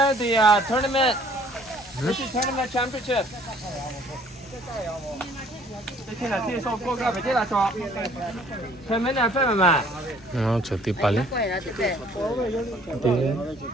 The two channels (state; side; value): normal; both; correlation 0.57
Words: the tournament. This is tournament championship. 这天哪，这说过个，别这来说。前面两份嘛。就第八哩。